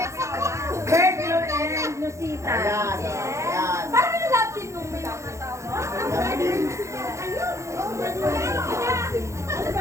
Bertlo and Lucita. Parang yung love team nung may mga tao.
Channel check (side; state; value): left; late; 0.14 ms